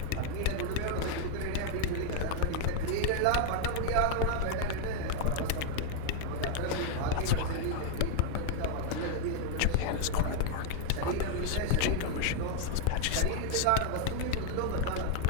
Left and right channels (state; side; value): different; both; correlation 0.00